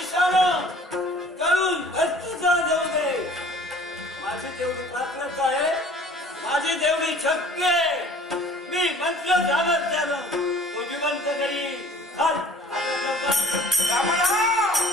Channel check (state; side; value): normal; both; correlation 0.49